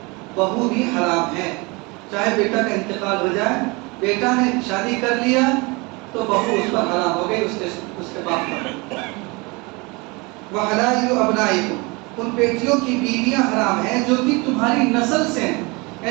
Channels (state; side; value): quieter; left; 26.9 dB